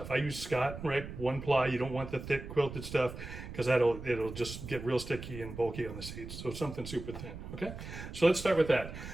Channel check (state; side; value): noise; right; rumble, 10 dB below the sound